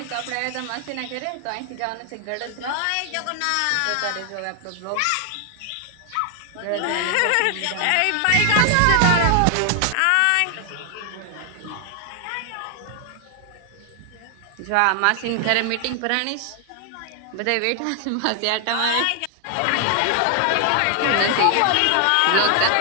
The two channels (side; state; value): both; different; correlation 0.00